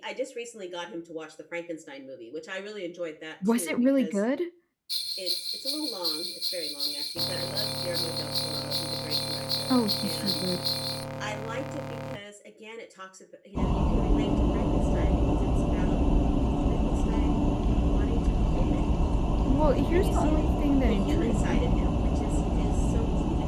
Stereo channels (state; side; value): identical; both; correlation 1.00